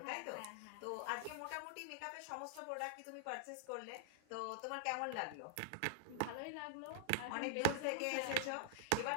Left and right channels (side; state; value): both; different; correlation 0.00